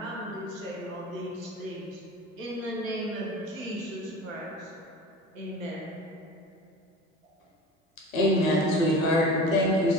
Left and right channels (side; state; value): both; normal; correlation 0.36